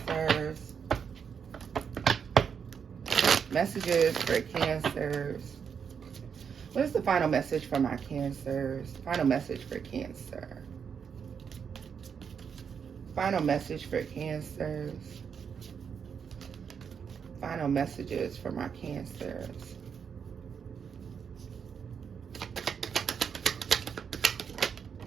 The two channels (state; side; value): quieter; left; 6.9 dB